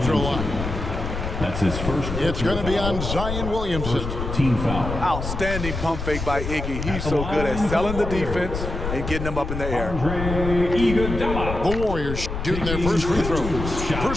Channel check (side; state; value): left; noise; rumble, 5 dB below the sound